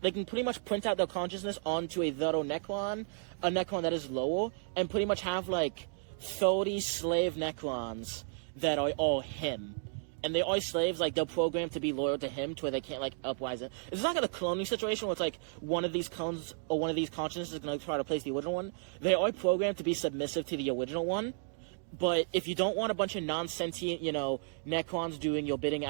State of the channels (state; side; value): silent; left; digital silence